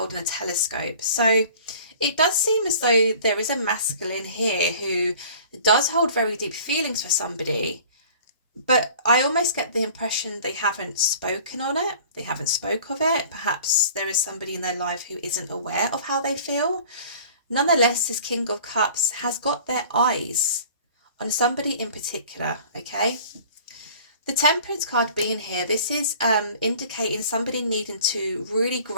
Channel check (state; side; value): inverted; both; correlation -0.47